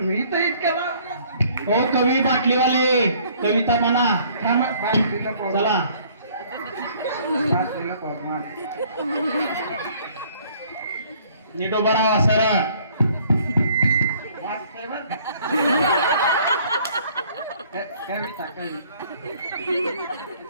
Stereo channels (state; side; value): inverted; both; correlation -0.59